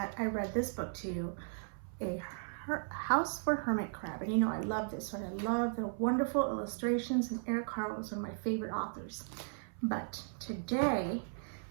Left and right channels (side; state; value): left; silent; 54 dB below the other